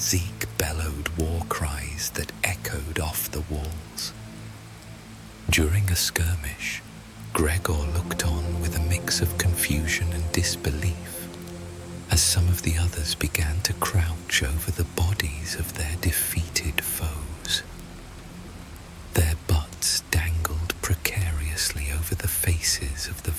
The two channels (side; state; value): both; identical; correlation 1.00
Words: bellowed war cries that echoed off the walls. During a skirmish, Gregor looked on with a mix of confusion and disbelief as some of the others began to crouch over the bodies of their defeated foes. Their butts dangled precariously over the faces of the